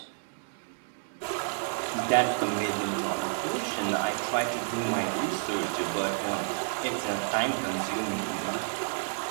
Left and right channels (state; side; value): silent; left; 58 dB below the other